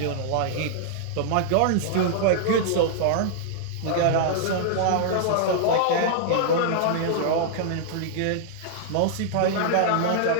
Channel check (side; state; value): both; different; correlation -0.01